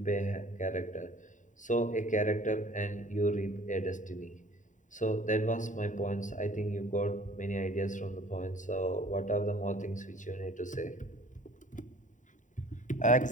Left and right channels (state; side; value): late; right; 0.36 ms